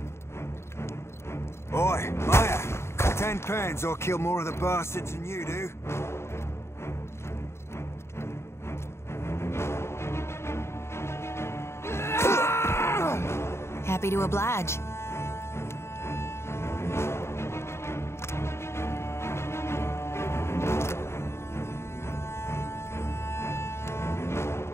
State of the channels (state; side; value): late; right; 0.13 ms